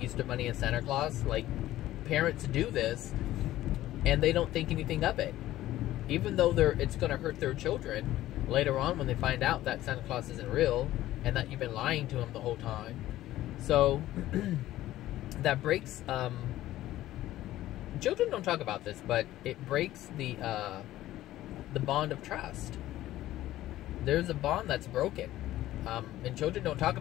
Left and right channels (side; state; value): right; quieter; 14.8 dB